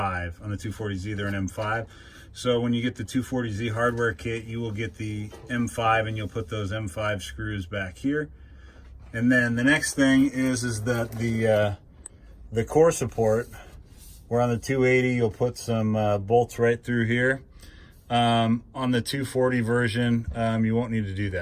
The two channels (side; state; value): both; identical; correlation 1.00